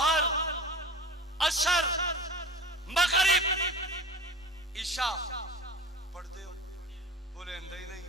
عصر مغرب عشاء پڑھتے ہو بولے اندر ہی نہیں.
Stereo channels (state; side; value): normal; both; correlation 0.36